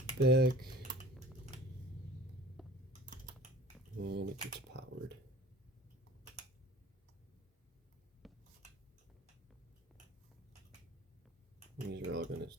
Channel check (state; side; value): normal; both; correlation 0.45